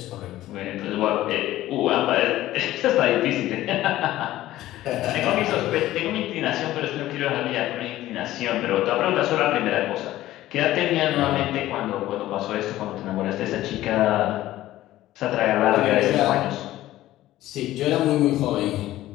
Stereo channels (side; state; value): right; quieter; 15.0 dB